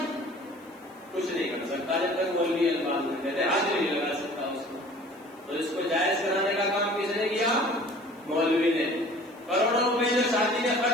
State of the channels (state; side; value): noise; left; hiss, 30 dB below the sound